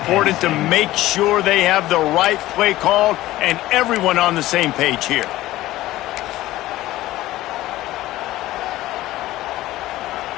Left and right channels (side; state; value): right; quieter; 16.2 dB